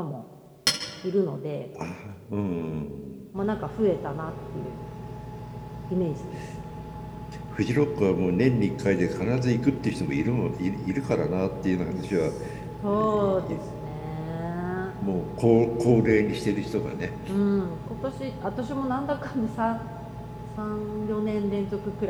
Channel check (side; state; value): both; identical; correlation 1.00